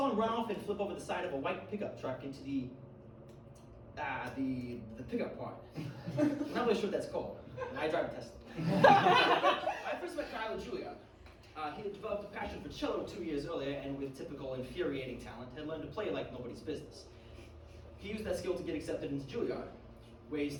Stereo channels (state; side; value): identical; both; correlation 1.00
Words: him run off and flip over the side of a white pickup truck into the pickup part. I'm not really sure what that's called. I drive a Tesla. I first met Kyle at Juilliard. He had developed a passion for cello 2 years earlier, and with typical infuriating talent, had learned to play like nobody's business. He used that skill to get accepted into Juilliard, where he